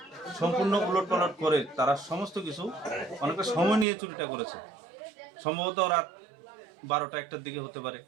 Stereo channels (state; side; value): drops out; left; at 3.9 s